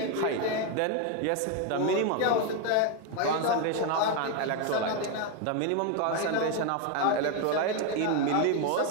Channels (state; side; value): different; both; correlation 0.01